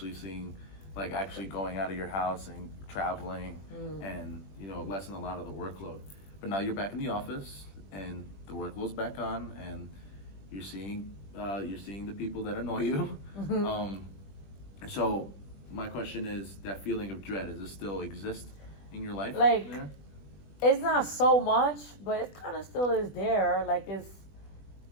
seeing, like, actually going out of your house and traveling and lessen a lot of the workload. But now you're back in the office and the workload's back on, and you're seeing the people that annoy you. So my question is, that feeling of dread, does it still exist in your life? Like, there? It's not so much, but it kind of still is there. Like,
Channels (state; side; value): late; right; 20 ms